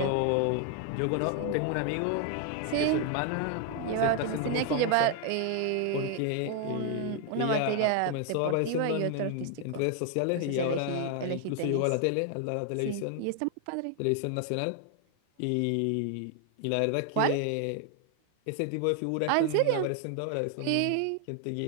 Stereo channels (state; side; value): different; both; correlation 0.00